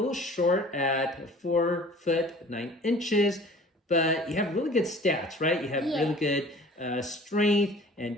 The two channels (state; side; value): normal; both; correlation 0.47